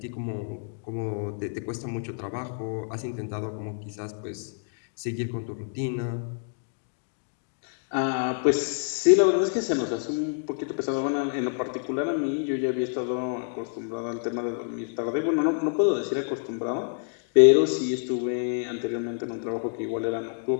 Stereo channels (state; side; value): silent; right; digital silence